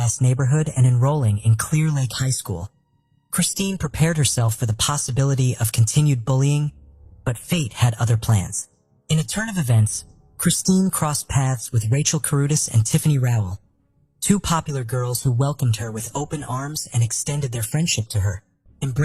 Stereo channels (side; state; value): both; identical; correlation 1.00